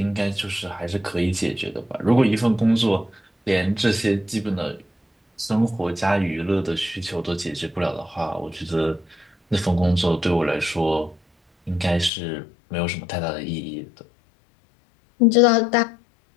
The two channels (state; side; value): drops out; right; at 12.1 s